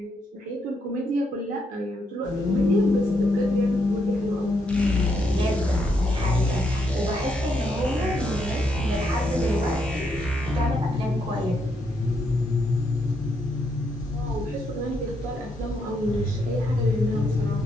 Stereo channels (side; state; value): both; normal; correlation 0.77